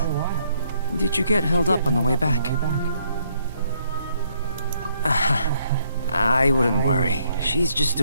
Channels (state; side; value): inverted; both; correlation -0.69